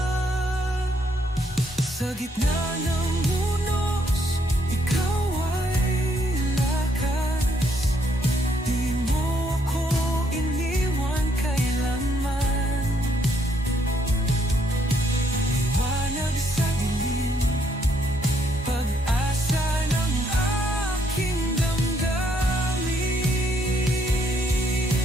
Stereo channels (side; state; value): both; normal; correlation 0.72